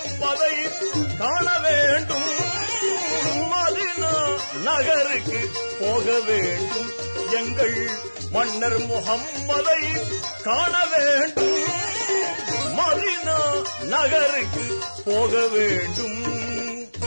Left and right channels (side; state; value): both; inverted; correlation -1.00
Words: காண வேண்டும். மதீனா நகருக்கு போக வேண்டும், எங்கள் மன்னர் முஹம்மதை காண வேண்டும். மதீனா நகருக்கு போக வேண்டும்.